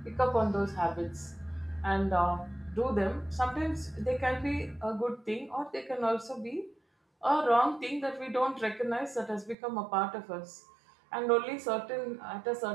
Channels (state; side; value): drops out; left; at 9.6 s